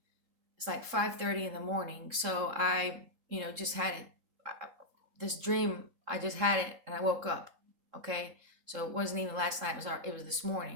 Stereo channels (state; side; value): late; left; 3.7 ms